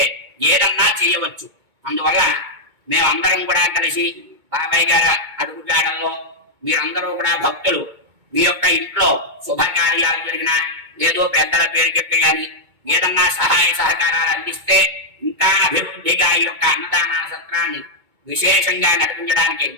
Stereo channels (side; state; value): left; late; 2.2 ms